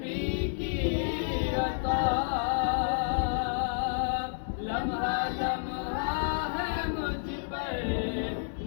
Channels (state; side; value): silent; right; digital silence